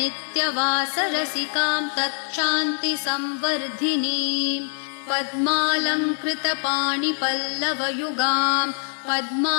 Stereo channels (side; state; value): right; silent; 56 dB below the other